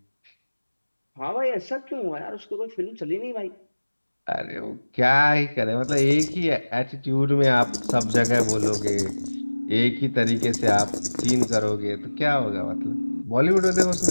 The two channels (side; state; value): both; inverted; correlation -1.00